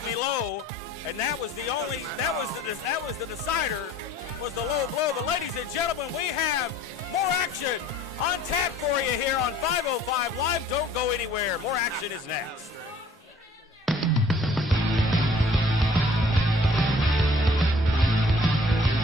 me low, and that was the decider, was the low blow. But ladies and gentlemen, we have more action on tap for you here on 505 Live. Don't go anywhere. More action is next.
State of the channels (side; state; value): both; normal; correlation 0.53